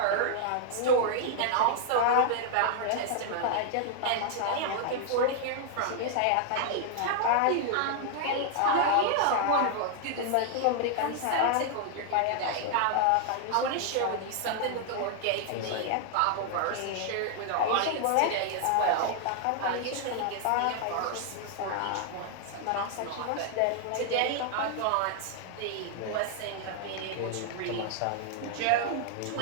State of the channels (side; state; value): both; different; correlation 0.00